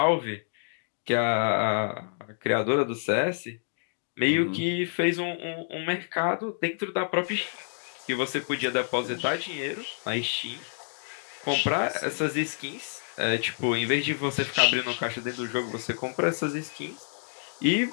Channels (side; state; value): right; silent; digital silence